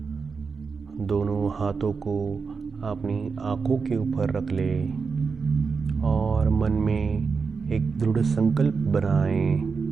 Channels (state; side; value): quieter; left; 5.1 dB